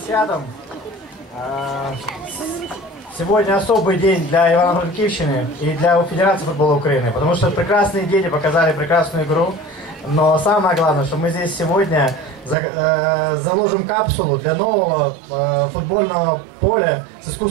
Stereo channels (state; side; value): drops out; left; at 12.6 s